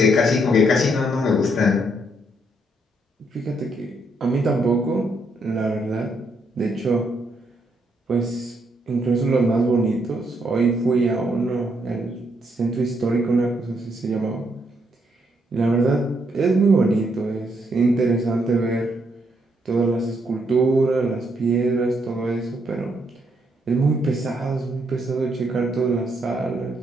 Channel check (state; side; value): normal; both; correlation 0.75